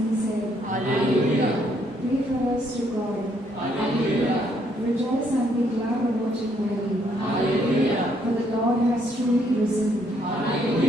said. Hallelujah. Pray for us to God. Hallelujah. Rejoice and be glad about it daily. Hallelujah. For the Lord has truly risen.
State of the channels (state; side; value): normal; both; correlation 0.70